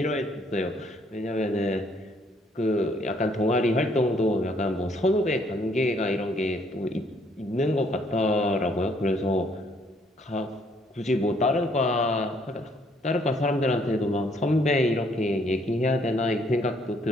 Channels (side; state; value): both; normal; correlation 0.66